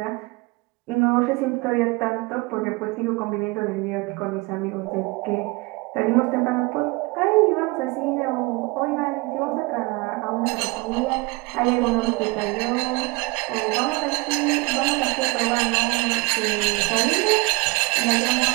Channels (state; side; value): quieter; left; 25.3 dB